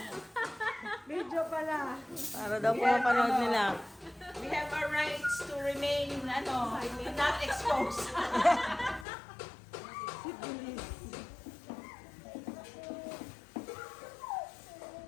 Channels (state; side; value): drops out; right; at 9.1 s